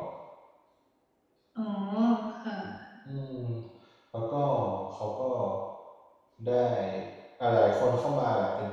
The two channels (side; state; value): both; identical; correlation 1.00